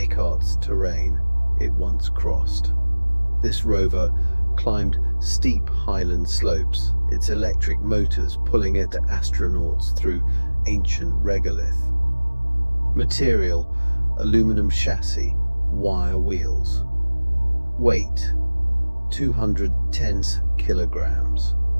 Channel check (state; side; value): inverted; both; correlation -1.00